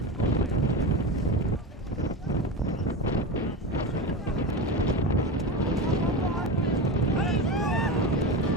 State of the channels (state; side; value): normal; both; correlation 0.23